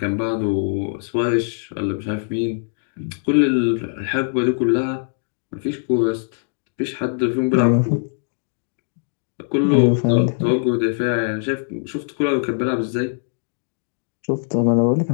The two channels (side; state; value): right; silent; 65 dB below the other